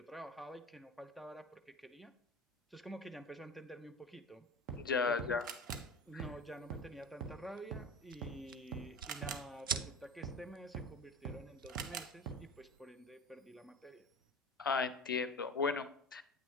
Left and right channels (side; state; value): both; normal; correlation 0.33